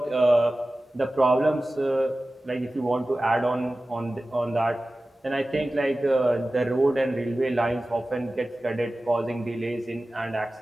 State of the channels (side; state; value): both; normal; correlation 0.96